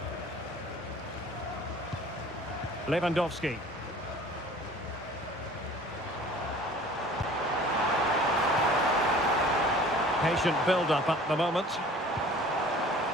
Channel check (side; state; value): both; normal; correlation 0.47